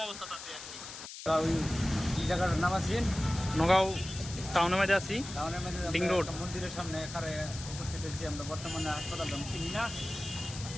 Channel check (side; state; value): left; noise; hiss, 11 dB below the sound